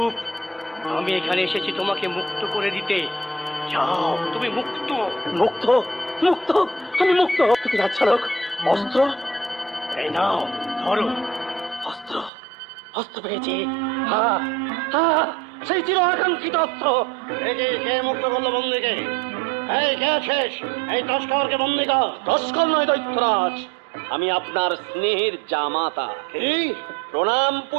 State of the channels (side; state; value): left; drops out; at 12.3 s